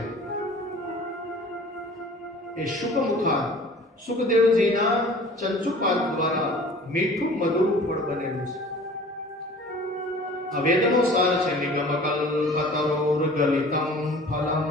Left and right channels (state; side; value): normal; both; correlation 0.46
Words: એ શુકમુખા સુખદેવજીના ચંચુપાદ દ્વારા મીઠું મધુર ફળ બનેલું છે. આ વેદનો સાર છે. નિગમ કલ્પતરોર ગલિતમ ફલમ.